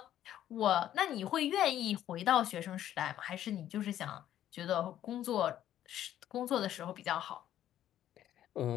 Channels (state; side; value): quieter; right; 11.7 dB